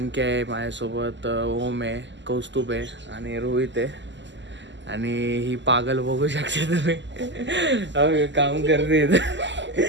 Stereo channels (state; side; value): late; left; 0.53 ms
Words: आहे माझ्यासोबत, ओम आहे, कौस्तुभ आहे आणि रोहित आहे. आणि ही पागल बघू शकता तुम्ही काम करते